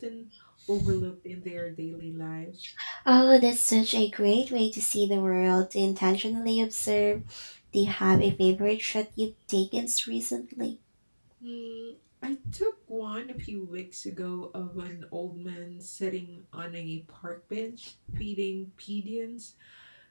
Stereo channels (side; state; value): both; inverted; correlation -1.00